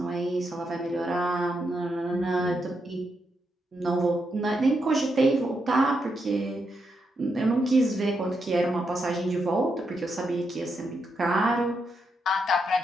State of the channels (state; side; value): normal; both; correlation 0.82